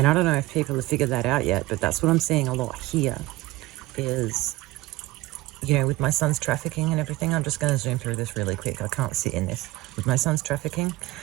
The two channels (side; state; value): left; quieter; 18.6 dB